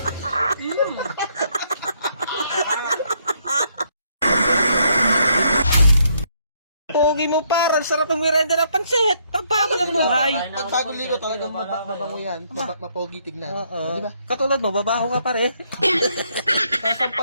Pogi mo par, ang sarap ang merenda ng pansit. Pagbago ng buhay. Pag bagong ligo talagang mabango yan. Mapogi tignan. Oo. Di ba? Katulad mo, babaho ka pare.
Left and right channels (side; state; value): both; inverted; correlation -0.71